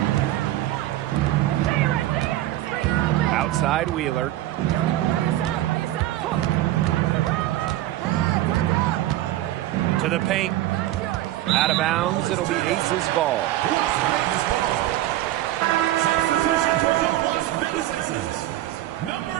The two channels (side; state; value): left; quieter; 14.8 dB